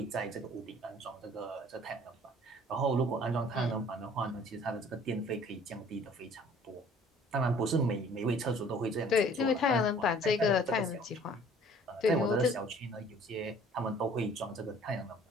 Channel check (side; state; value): both; normal; correlation 0.53